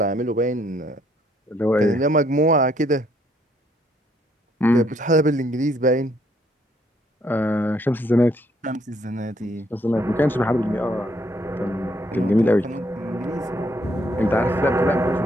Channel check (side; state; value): both; normal; correlation 0.69